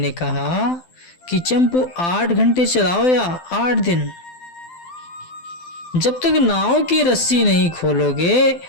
कहा कि चंपू 8 घंटे चलाओ या 8 दिन, जब तक नाव की रस्सी नहीं खोलोगे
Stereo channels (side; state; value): right; late; 12 ms